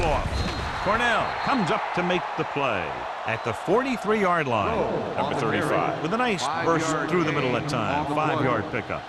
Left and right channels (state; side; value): identical; both; correlation 1.00